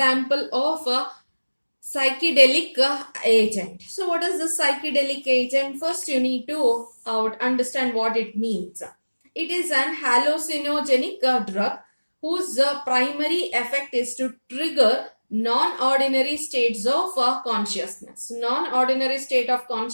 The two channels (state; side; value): inverted; both; correlation -1.00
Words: of a psychedelic agent. So what is the psychedelic agent? First you need to understand what it means. It is an hallucinogenic drug whose primary effect is to trigger non-ordinary states of consciousness. Non-ordinary state of